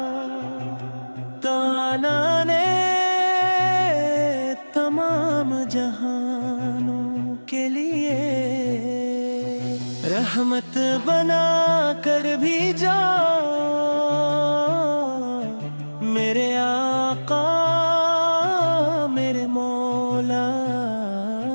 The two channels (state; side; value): inverted; both; correlation -1.00